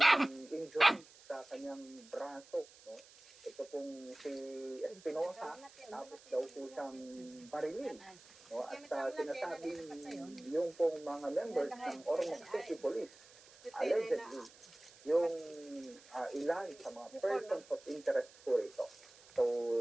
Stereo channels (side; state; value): right; noise; hiss, 22 dB below the sound